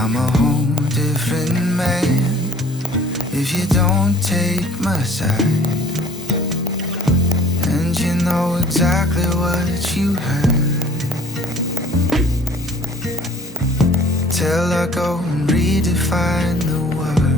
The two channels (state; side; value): normal; both; correlation 0.52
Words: a whole different man if you don't take my side. And you know exactly what you heard. Till I go and redefine the